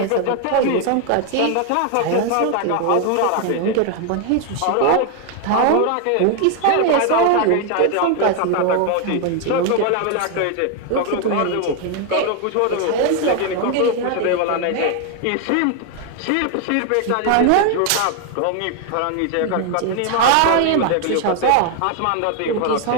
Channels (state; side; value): different; both; correlation 0.01